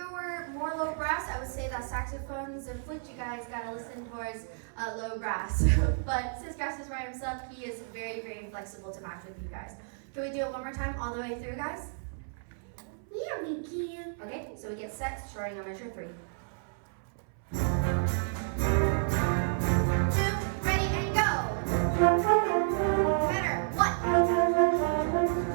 were more low brass, I would say that saxophones and flute, you guys gotta listen towards low brass. But since Grass is by himself, he is very, very flexible to match with you guys. Can we do it one more time all the way through, guys? Yeah, we can. Okay, so we get set, starting on measure 3. 2, ready, and go. Better. 1.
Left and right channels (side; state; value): left; silent; 57 dB below the other